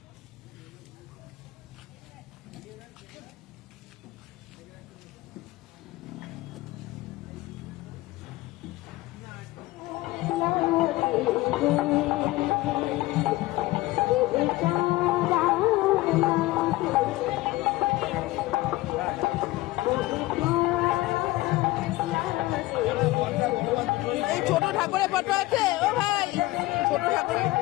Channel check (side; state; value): right; quieter; 18.9 dB